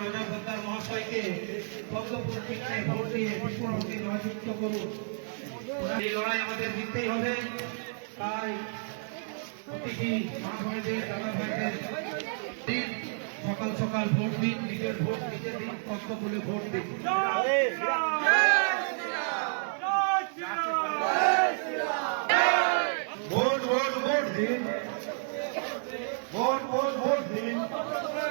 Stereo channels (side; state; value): left; silent; digital silence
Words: অজয় পোদ্দার মহাশয়কে পদ্মপুরীতে ভোট দিয়ে বিপুল ভোটে জয়যুক্ত করুন। এই লড়াই আমাদের জিততেই হবে, তাই প্রতিটি মা বোনেদের দাদা ভাইদের সকাল সকাল ভোট দিন, নিজের ভোট নিজে দিন, পদ্মফুলে ভোট দিন। ভোট ভোট ভোট দিন, ভোট ভোট ভোট দিন।